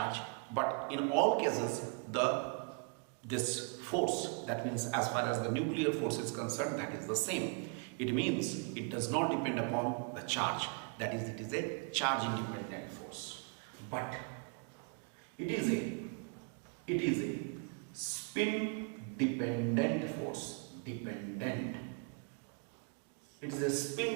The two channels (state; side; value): quieter; left; 38.2 dB